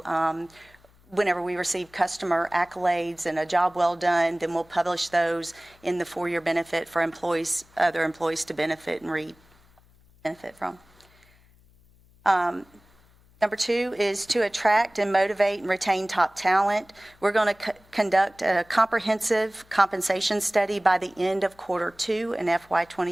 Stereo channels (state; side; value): noise; left; hum, 30 dB below the sound